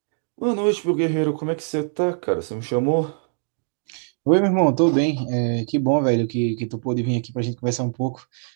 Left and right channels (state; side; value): silent; left; 56 dB below the other